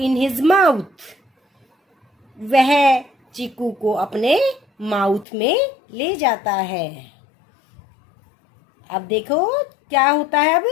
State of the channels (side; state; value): right; drops out; at 5.2 s